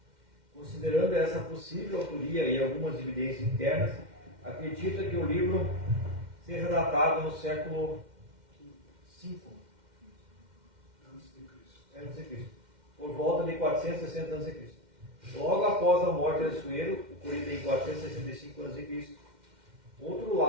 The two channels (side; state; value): left; late; 2.1 ms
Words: Considerando essa possível autoria e algumas evidências internas, acredita que o livro seja datado no século V a.C., por volta de 460 a.C. Logo após a morte de Assuero, ocorrida em 465 a.C.